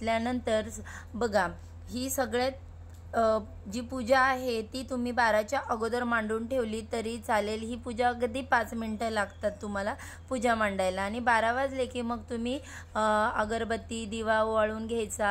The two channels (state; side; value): identical; both; correlation 1.00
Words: बघा, ही सगळ्यात जी पूजा आहे ती तुम्ही 12च्या अगोदर मांडून ठेवली तरी चालेल। ही पूजा अगदी 5 मिनिटं लागतात तुम्हाला पूजा मांडायला आणि 12 वाजले की मग तुम्ही अगरबत्ती दिवा ओवाळून